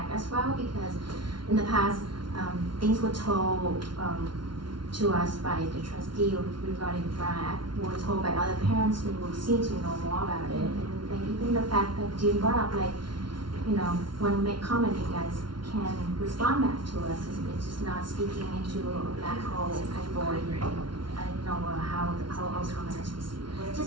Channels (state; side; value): late; left; 0.72 ms